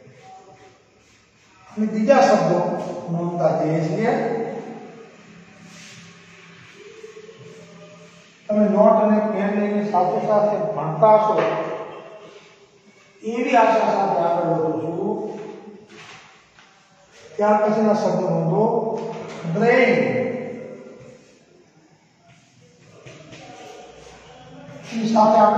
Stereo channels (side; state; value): both; identical; correlation 1.00